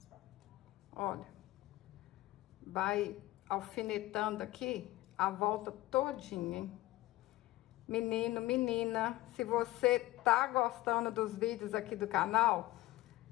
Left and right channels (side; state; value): right; quieter; 17.5 dB